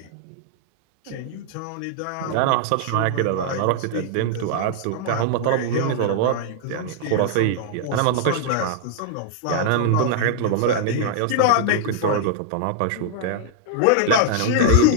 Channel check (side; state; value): both; different; correlation -0.01